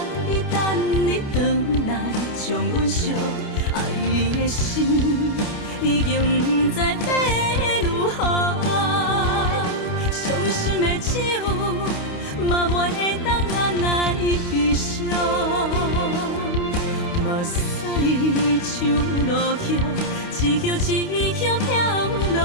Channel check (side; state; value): right; late; 29 ms